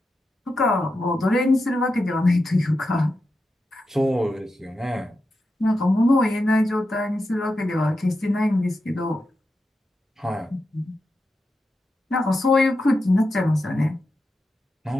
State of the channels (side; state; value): both; normal; correlation 0.89